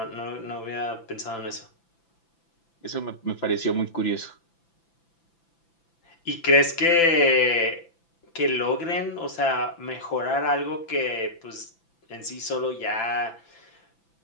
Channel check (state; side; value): late; right; 5.9 ms